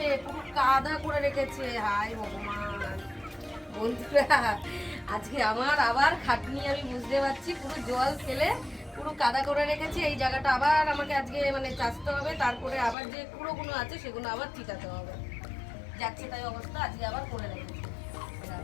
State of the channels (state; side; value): drops out; right; at 13.0 s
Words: পুরো কাদা করে রেখেছে। হায় ভগবান বন্ধুরা, আজকে আমার আবার খাটনি, আমি বুঝতে পারছি। পুরো জল ফেলে পুরো কাদা করে রেখেছি। এই জায়গাটা আবার আমাকে আজকে মানে চাষতে হবে, তারপরে আবার যে কুড়োগুলো আছে সেগুলো আবার ঠিকাতে হবে। যাচ্ছে তাই অবস্থা, আজকে আবার করে রেখেছি। এবার